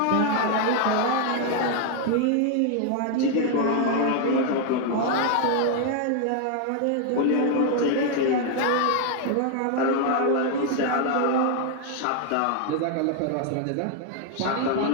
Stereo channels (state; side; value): different; both; correlation 0.00